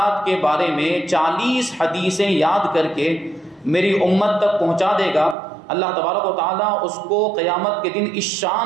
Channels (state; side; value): drops out; left; at 5.4 s